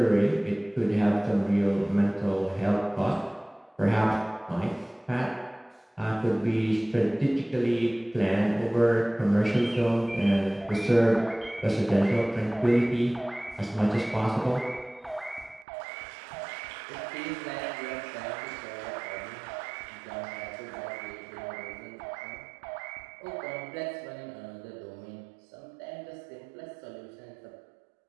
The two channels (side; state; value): left; drops out; at 15.7 s